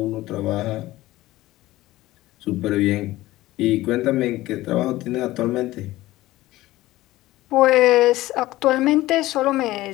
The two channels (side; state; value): right; quieter; 17.1 dB